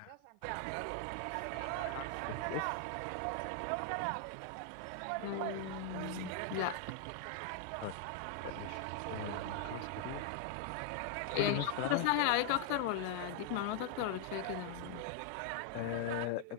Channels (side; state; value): both; different; correlation 0.00